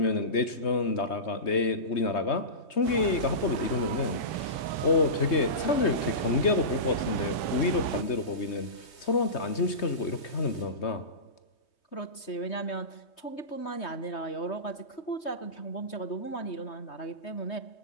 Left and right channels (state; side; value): late; right; 3.2 ms